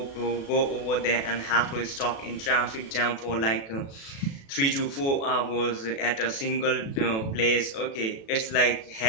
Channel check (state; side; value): late; right; 36 ms